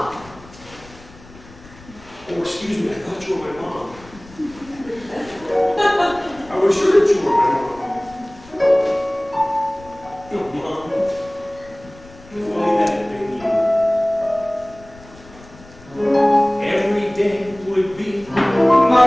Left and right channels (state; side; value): noise; left; rumble, 22 dB below the sound